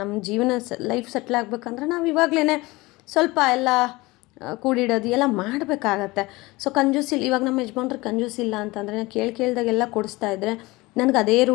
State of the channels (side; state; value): right; quieter; 21.8 dB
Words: ಜೀವನ ಲೈಫ್ ಸೆಟ್ಲ್ ಆಗಬೇಕಂದ್ರೆ ನಾವು ಇವಾಗಲೇ ಸ್ವಲ್ಪ ಎಲ್ಲ ಕೂಡಿಡೋದು ಎಲ್ಲ ಮಾಡಬೇಕಾಗತ್ತೆ. ಸೊ ಕಂಜೂಸಿಲ್ಲ. ಇವಾಗ ನಮ್ಮ ಯಜಮಾನ್ರು ಕಂಜೂಸಿಲ್ಲ ಅಂತಂದರೆ ನಾನು ಕೇಳ್ದಾಗೆಲ್ಲ ಕೊಡಿಸ್ತಾ ಇದ್ದರೆ ನನಗೆ ಅದೇ